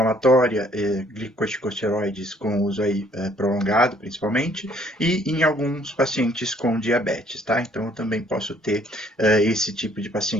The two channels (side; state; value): both; normal; correlation 0.62